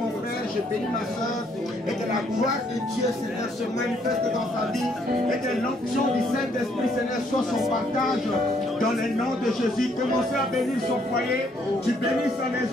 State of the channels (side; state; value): both; normal; correlation 0.69